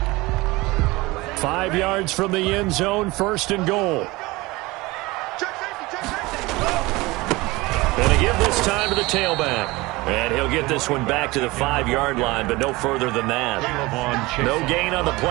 5 yards from the end zone, 1st and goal. And they give this time to the tailback. And he'll get this one back to the 5-yard line, but no further than that. No gain on the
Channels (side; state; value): left; quieter; 21.8 dB